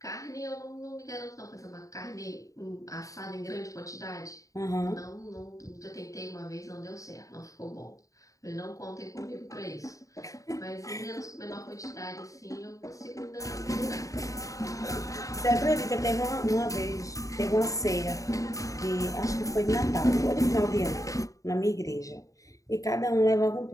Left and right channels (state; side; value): late; right; 0.16 ms